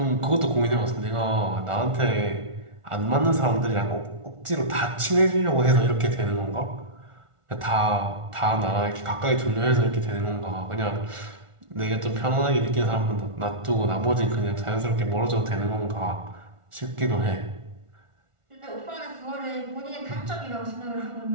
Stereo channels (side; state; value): left; late; 1.4 ms